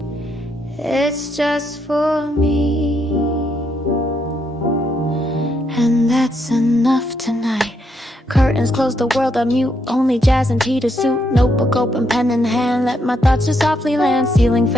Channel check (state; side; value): normal; both; correlation 0.77